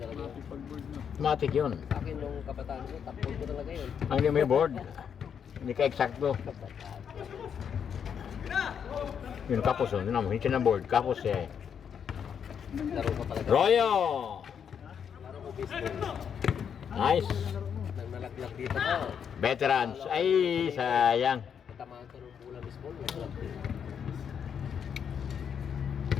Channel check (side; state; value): right; quieter; 7.7 dB